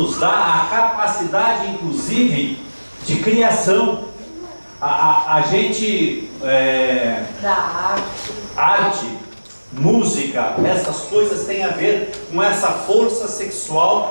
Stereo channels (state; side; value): inverted; both; correlation -1.00